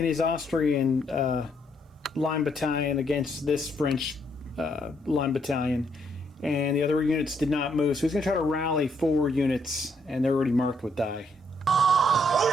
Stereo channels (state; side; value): normal; both; correlation 0.72